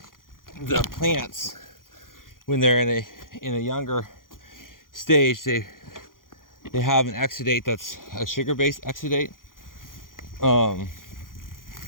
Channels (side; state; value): right; late; 0.90 ms